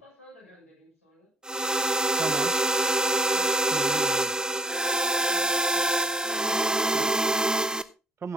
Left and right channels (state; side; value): normal; both; correlation 0.58